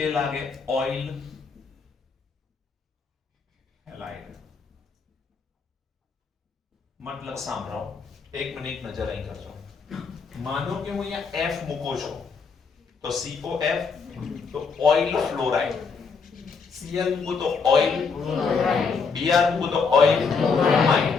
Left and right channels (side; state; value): right; quieter; 5.2 dB